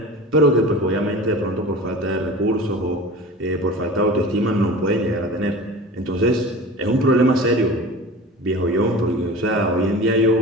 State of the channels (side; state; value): both; normal; correlation 0.35